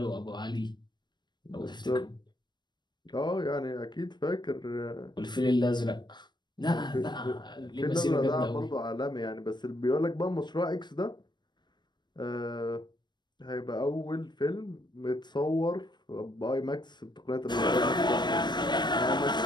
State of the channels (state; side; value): late; right; 0.21 ms